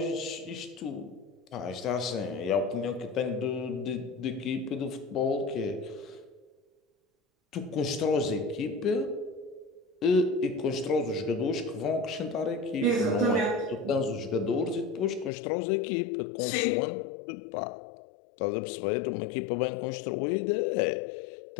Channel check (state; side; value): drops out; right; at 15.3 s